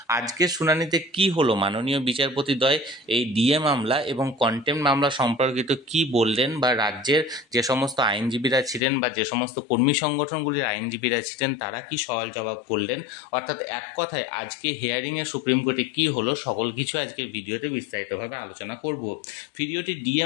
আজকের শুনানিতে কি হলো, মাননীয় বিচারপতিদ্বয় এই ডিএ মামলা এবং কন্টেম্প্ট মামলা সম্পর্কিত কি বললেন, বা রাজ্যের যে সমস্ত আইনজীবীরা ছিলেন বা যে সমস্ত কর্মী সংগঠনগুলির আইনজীবীরা ছিলেন তারা কি সওয়াল জবাব করলেন, অর্থাৎ এক কথায় আজকে হিয়ারিংয়ে সুপ্রিম কোর্টে কি হলো, সকল কিছু আজকের ভিডিওতে বিস্তারিতভাবে আলোচনা করব। ভিডিওটি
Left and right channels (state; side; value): drops out; right; at 8.8 s